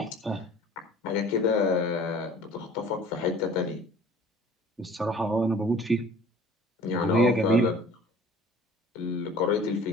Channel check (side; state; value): both; normal; correlation 0.48